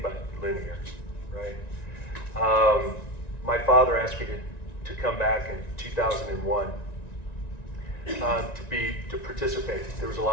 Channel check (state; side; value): late; right; 1.9 ms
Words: but linear, right? My father asked me to come back in 2001 to participate. There was a